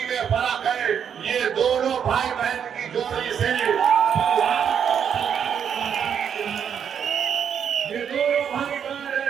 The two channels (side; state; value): left; quieter; 8.0 dB